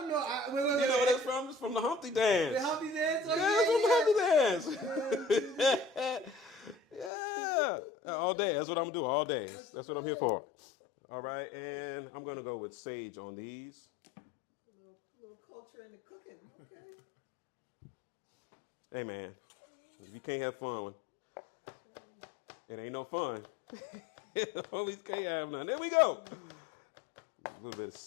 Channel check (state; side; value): drops out; right; at 7.1 s